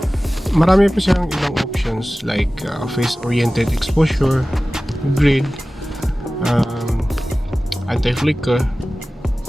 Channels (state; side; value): normal; both; correlation 0.97